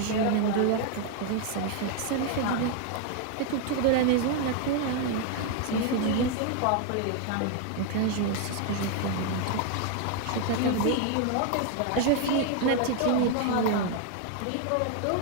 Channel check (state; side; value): different; both; correlation 0.01